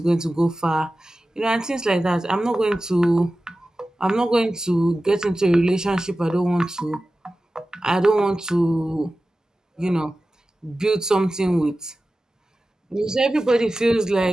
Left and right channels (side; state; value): both; normal; correlation 0.95